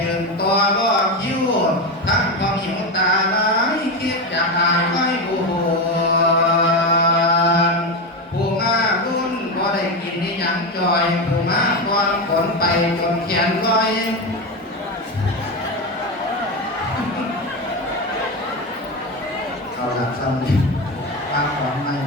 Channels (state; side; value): normal; both; correlation 0.16